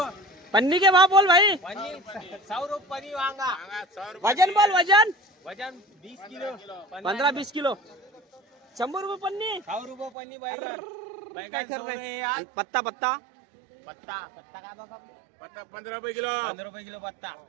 पन्नी के भाव बोल भाई. 100 रुपये वांगा. वजन बोल वजन. वजन 20 किलो. 15-20 किलो. 100 रुपये पन्नी. 100 रुपये पन्नी बैगन. बैगन 100 रुपये. पत्ता पत्ता पत्ता पत्ता काय बघा. पत्ता 15 रुपये किलो. 15 रुपये किलो पत्ता.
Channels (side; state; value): left; drops out; at 10.1 s